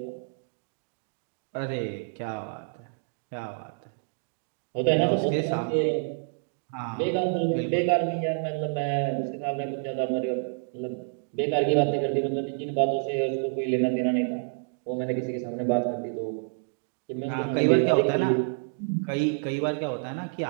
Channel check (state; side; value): silent; left; digital silence